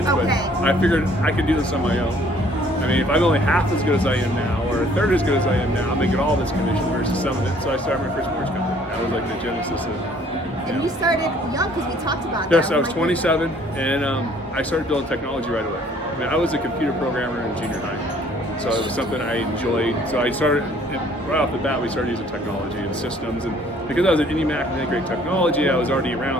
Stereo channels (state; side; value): normal; both; correlation 0.58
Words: Okay. But I figured I could do this on my own. If I'm only half as good as I am now, or a third as good as I am now, I'm making all this commission versus some of it. So I started my first mortgage company. That was like the genesis of. And you started young, because we talked about that. Yes, I was 27, and I started building technology right away. I was a computer programmer in junior high, so it was something I enjoyed. So I started right off the bat. We started using technology and systems, and because I was at IndyMac and had great technology, I was already